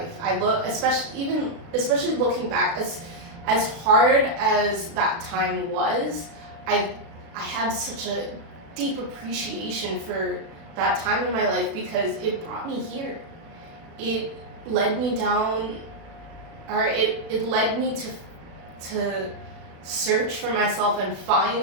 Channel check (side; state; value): left; late; 36 ms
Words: I look, especially looking back, as hard as that time was, I have such a deep appreciation for that time in my life, because it brought me here. It led me down, or it led me to search for myself and